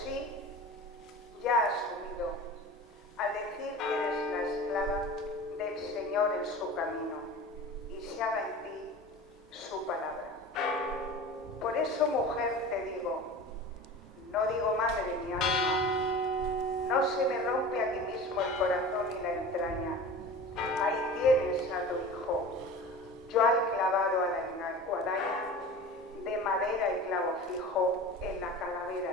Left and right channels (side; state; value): both; normal; correlation 0.36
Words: ya has asumido, al decir que eres la esclava del Señor en su camino, y se haga en ti su palabra. Por eso, mujer, te digo, no digo madre ni alma, no se me rompe aquí mismo el corazón y la entraña. Ahí tienes a tu hijo, yo al clavado a la guadaña, de madera y clavo fijo en la calavera